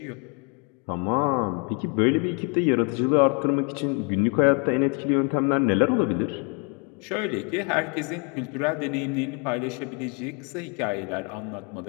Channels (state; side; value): quieter; right; 35.1 dB